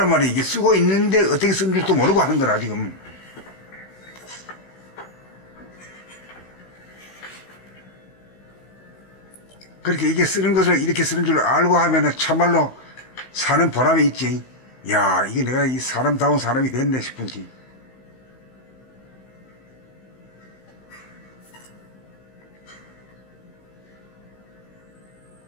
말이야. 이게 쓰고 있는데 어떻게 쓰는 줄도 모르고 하는 거라, 지금. 그렇게 이게 쓰는 것을 이렇게 쓰는 줄 알고 하면은 참말로 사는 보람이 있지. 야, 이게 내가 이 사람다운 사람이 됐네 싶은지.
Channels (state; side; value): late; right; 16 ms